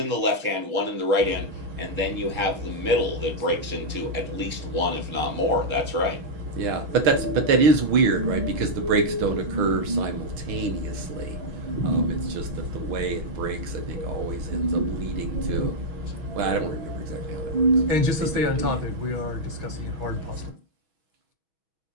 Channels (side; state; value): left; late; 6.2 ms